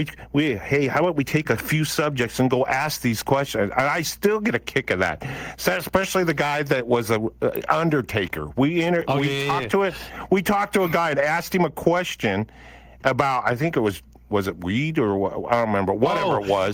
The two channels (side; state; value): both; identical; correlation 1.00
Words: how about we take a few subjects and go ask these questions? And I still get a kick of that. So especially the guy that was a undertaker. We talked to a guy and asked him a question about, I think it was it weed or what? I don't remember. Whatever it